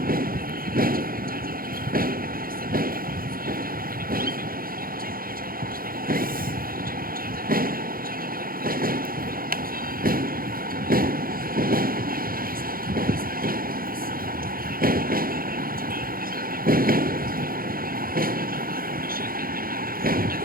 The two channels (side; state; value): left; late; 0.42 ms